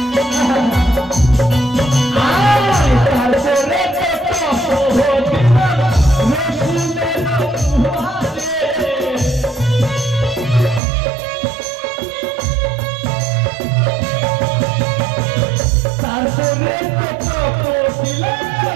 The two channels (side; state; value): left; drops out; at 10.8 s